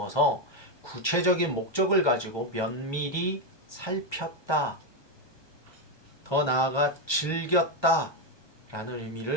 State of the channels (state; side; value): late; right; 1.2 ms